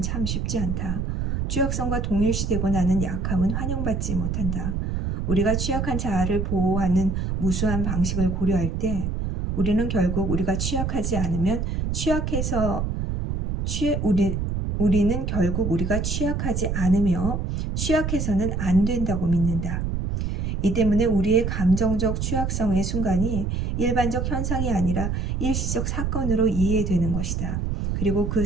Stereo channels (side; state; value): right; noise; rumble, 1 dB below the sound